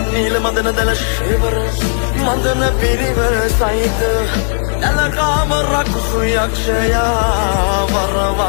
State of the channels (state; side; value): silent; right; digital silence